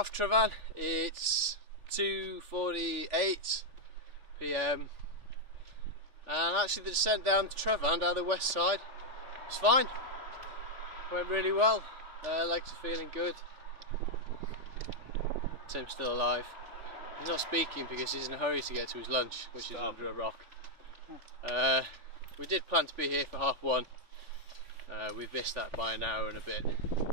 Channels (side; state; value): left; late; 3.4 ms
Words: Trevan. It's 2:48 PM, and actually the descent down to Trevan, down the west side, was fine. Went really well. Legs are feeling good. Tim's still alive. He's not speaking because he's in a hurry to get to his lunch, which is under a rock. We did plan to be here for 1:30. We've missed that by an hour and a bit,